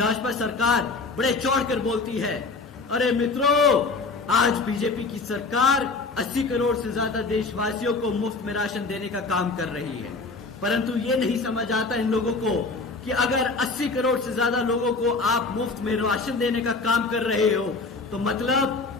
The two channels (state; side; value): quieter; right; 3.9 dB